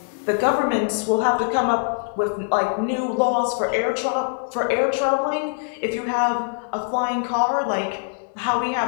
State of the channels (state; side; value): silent; right; digital silence